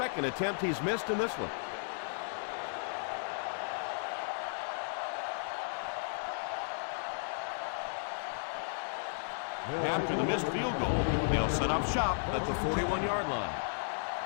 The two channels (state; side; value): silent; right; digital silence